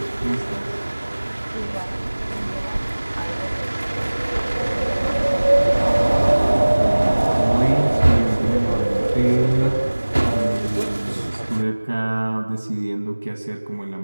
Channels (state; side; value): inverted; both; correlation -1.00